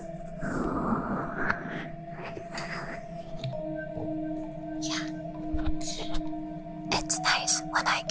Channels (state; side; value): identical; both; correlation 1.00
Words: Yeah. It's nice when I